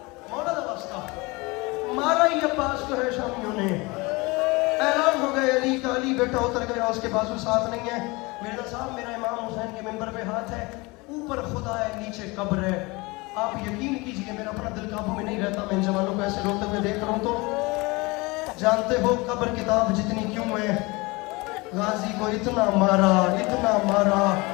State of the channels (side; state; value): right; quieter; 24.6 dB